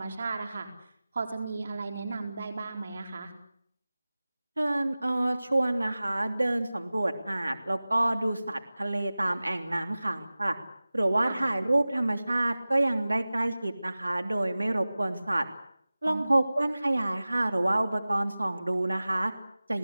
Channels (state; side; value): inverted; both; correlation -0.97